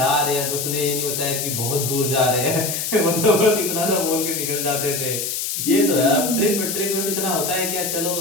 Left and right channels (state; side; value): noise; left; hiss, 2 dB below the sound